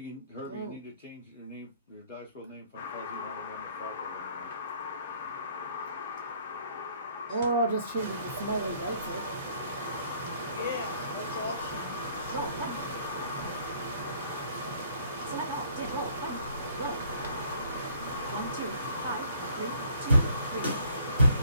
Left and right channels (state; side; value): inverted; both; correlation -0.59